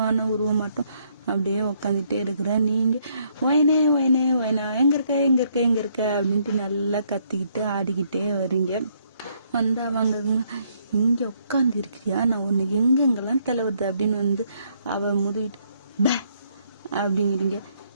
மட்டும் அப்படியே உக்காந்துட்டே இருக்கிற. நீங்க வயனே வயனே வயனா, எங்க இருக்க அப்படின்ட்டு நல்லா கத்திக்கிட்டு ஆடிக்கிட்டே வரீங்க. வந்து அவங்க இங்க உட்காந்து இருக்கிறியா, நான் உன்னை எங்கெங்கெல்லாம் தலைவருது அப்படின்னு வந்து அவ முதுகிட்டு பே அப்படிங்கிறீங்க.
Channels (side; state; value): both; inverted; correlation -0.70